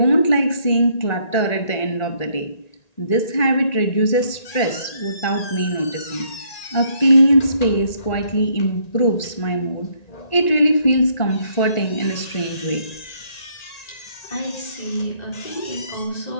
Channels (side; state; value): right; late; 1.9 ms